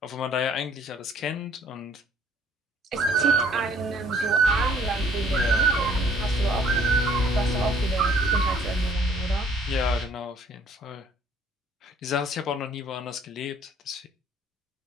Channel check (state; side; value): normal; both; correlation 0.59